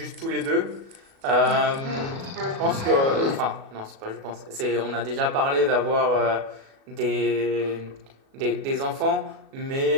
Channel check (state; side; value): late; left; 36 ms